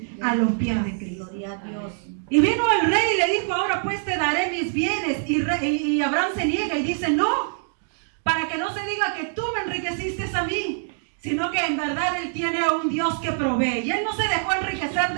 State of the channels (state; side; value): silent; left; digital silence